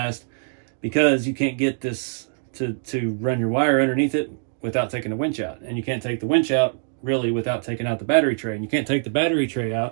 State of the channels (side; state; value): left; silent; digital silence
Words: because you can't get this to run your wire underneath it without taking the winch out. And you can't take the winch out really without taking out the battery tray. And you can't take the battery tray